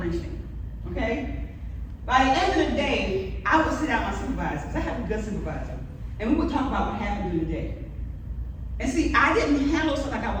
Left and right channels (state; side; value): identical; both; correlation 1.00